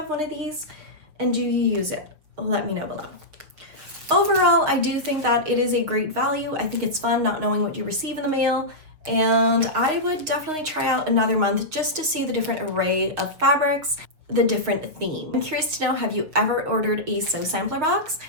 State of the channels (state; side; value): late; left; 6.5 ms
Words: one of these? And do you use it? Let me know below. Overall, I do think that it is a great value. I think it's fun not knowing what you receive in the mail. And I would definitely try out another month just to see the different array of fabrics, the different theme. I'm curious to know, have you ever ordered a sew sampler box?